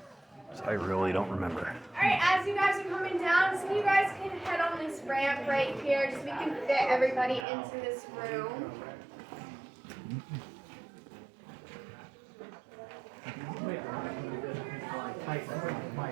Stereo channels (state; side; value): drops out; left; at 7.5 s